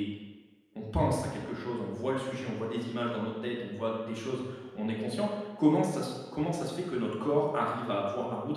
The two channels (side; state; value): both; identical; correlation 1.00